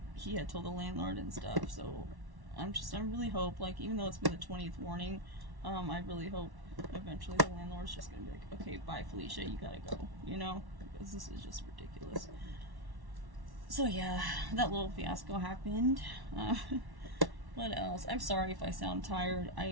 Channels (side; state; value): left; late; 1.1 ms